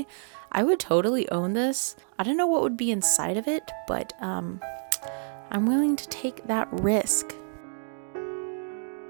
I would totally own this. I don't know what would be inside of it, but I'm willing to take that risk.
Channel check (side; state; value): left; silent; digital silence